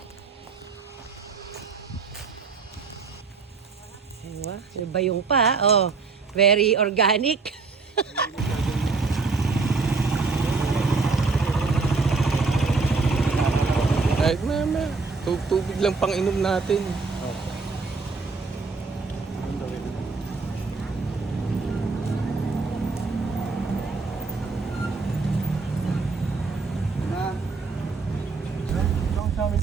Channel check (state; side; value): quieter; left; 4.2 dB